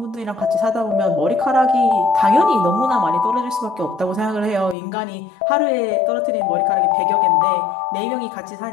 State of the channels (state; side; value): drops out; right; at 4.8 s